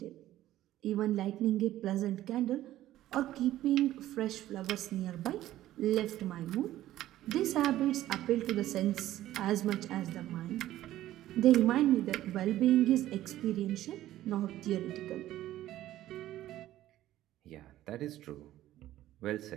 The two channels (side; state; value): left; quieter; 14.1 dB